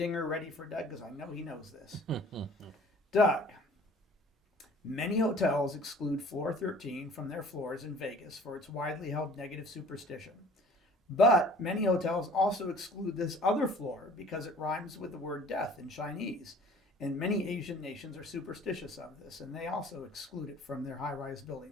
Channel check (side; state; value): both; normal; correlation 0.50